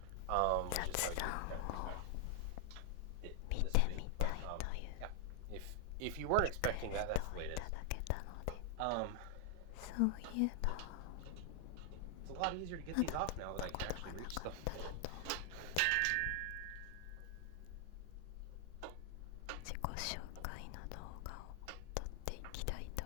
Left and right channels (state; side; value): different; both; correlation 0.00